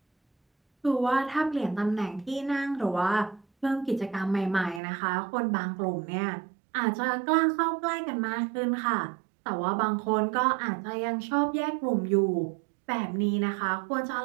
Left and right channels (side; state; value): left; drops out; at 4.8 s